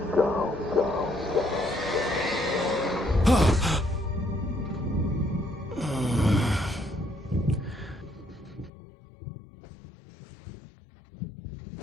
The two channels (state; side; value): drops out; right; at 8.7 s